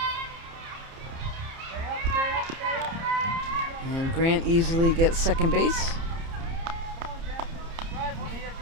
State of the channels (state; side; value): late; left; 30 ms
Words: And Grant easily gets second base. Come on, Jackson. Drive one here.